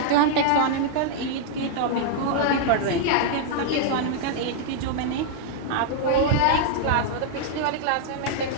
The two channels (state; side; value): different; both; correlation -0.01